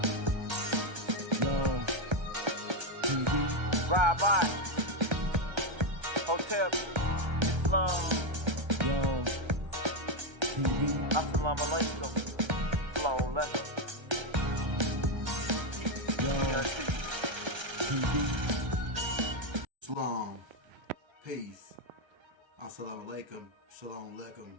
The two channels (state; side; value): late; left; 1.3 ms